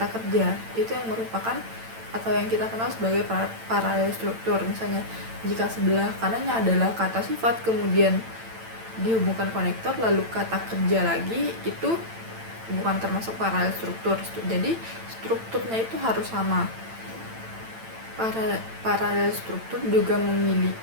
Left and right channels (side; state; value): left; late; 8.9 ms